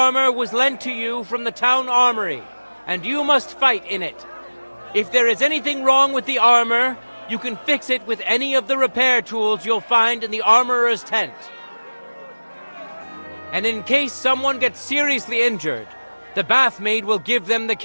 was lent to you from the town armory, and you must fight in it. If there is anything wrong with the armor, you can fix it with any of the repair tools you'll find in the armorer's tent. And in case someone gets seriously injured, the bathmaid will give them the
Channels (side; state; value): both; inverted; correlation -1.00